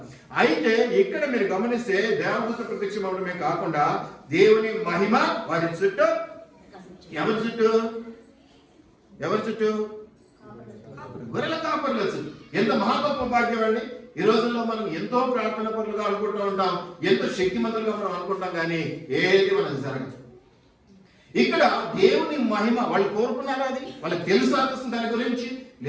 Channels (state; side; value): identical; both; correlation 1.00